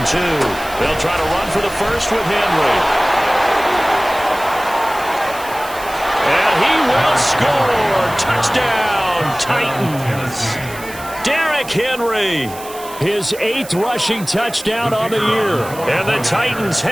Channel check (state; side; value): noise; right; hiss, 16 dB below the sound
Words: 2. They'll try to run for the first with Henry. And he will score. Touchdown, Titans. Derrick Henry. His 8th rushing touchdown on the year. And the Titans